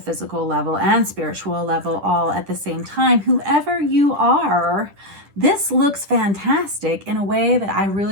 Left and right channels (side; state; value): left; late; 10 ms